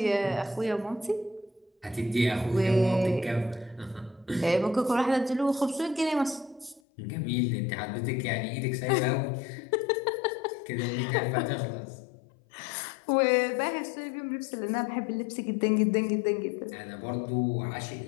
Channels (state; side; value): drops out; right; at 6.8 s